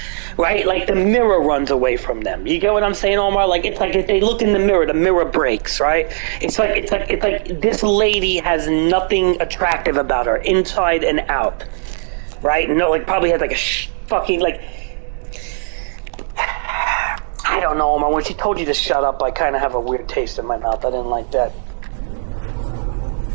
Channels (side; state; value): left; silent; digital silence